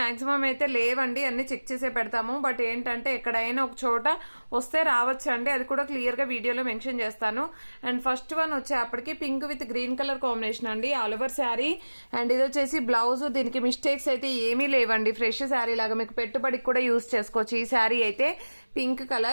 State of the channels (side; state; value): both; inverted; correlation -1.00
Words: అయితే లేవండి, అన్ని చెక్ చేసే పెడతాము. బట్ ఏంటంటే ఎక్కడైనా ఒక చోట వస్తే రావచ్చు అండి, అది కూడా క్లియర్ గా వీడియోలో మెన్షన్ చేస్తాను. అండ్ ఫస్ట్ వన్ వచ్చేప్పటికి pink with green colour combination అండి, ఆల్ ఓవర్ శారీ. అండ్ ఇది వచ్చేసి బ్లౌజ్. దీనికి మిస్టేక్స్ అయితే ఏమీ లేవండి, ఫ్రెష్ శారీ లాగా మీకు పెట్టుబడికి కూడా యూజ్ చేసుకోవచ్చు. ఈ శారీ అయితే పింక్